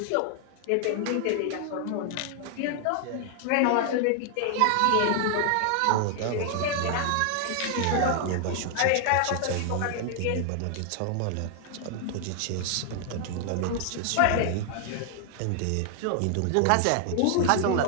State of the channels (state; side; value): different; both; correlation 0.00